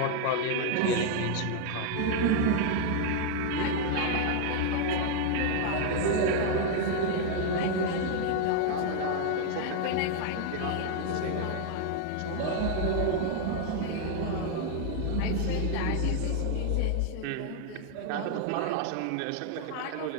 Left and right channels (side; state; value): both; different; correlation 0.00